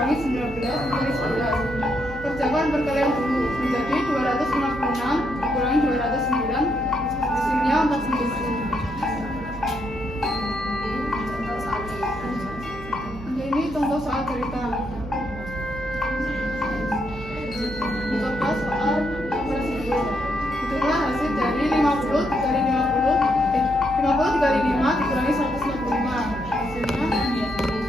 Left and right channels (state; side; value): noise; right; hum, 14 dB below the sound